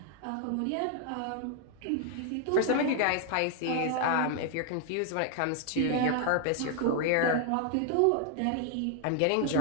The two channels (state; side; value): different; both; correlation 0.00